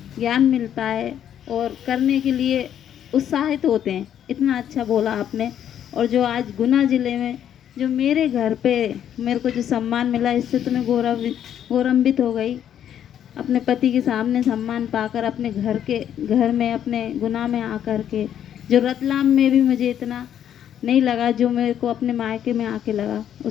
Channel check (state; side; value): quieter; right; 9.9 dB